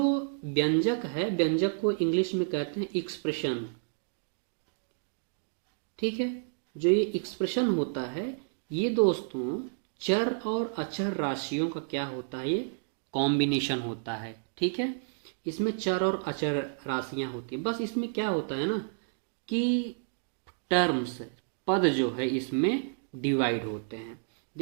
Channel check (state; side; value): silent; left; digital silence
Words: व्यंजक है, व्यंजक को इंग्लिश में कहते हैं एक्सप्रेशन। ठीक है, जो ये एक्सप्रेशन होता है ये दोस्तों चर और अचर राशियों का क्या होता है, ये कॉम्बिनेशन होता है। ठीक है, इसमें चर और अचर राशियां होती है। बस इसमें क्या होता है ना कि टर्म्स, पद जो है इसमें डिवाइड होते हैं।